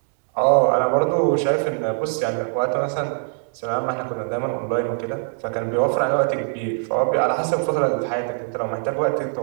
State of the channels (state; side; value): silent; left; digital silence